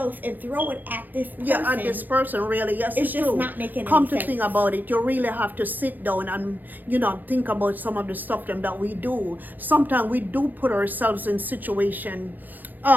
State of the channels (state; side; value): late; left; 0.086 ms